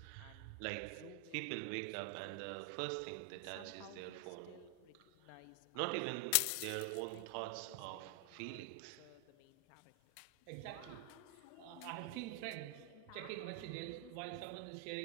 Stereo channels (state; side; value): different; both; correlation 0.00